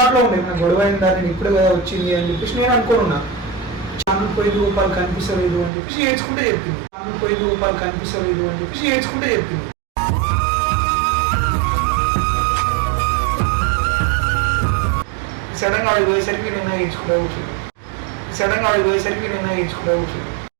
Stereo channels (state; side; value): drops out; left; at 5.7 s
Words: ఉండే ఏమైనా గొడవైందా, నేను ఇప్పుడే కదా వచ్చింది అని చెప్పేసి నేను అనుకోనున్నా. ఛానల్ పోయింది రూపాయలు కనిపిస్తలేదు అని చెప్పేసి ఏడ్చుకుంటే చెప్పింది. సడన్గా వాడికి పోయేసరికి నిన్న ఏడ్చుకుంటా కూర్చుంది.